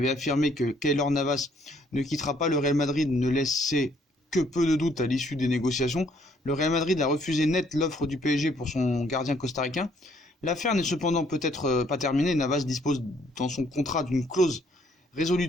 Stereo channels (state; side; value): normal; both; correlation 0.66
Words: affirmé que Keylor Navas ne quittera pas le Real Madrid ne laissaient que peu de doute à l'issue des négociations. Le Real Madrid a refusé net l'offre du PSG pour son gardien costaricain. L'affaire n'est cependant peut-être pas terminée. Navas dispose dans son contrat d'une clause